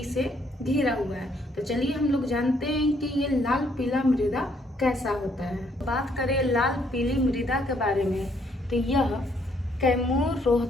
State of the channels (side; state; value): both; normal; correlation 0.69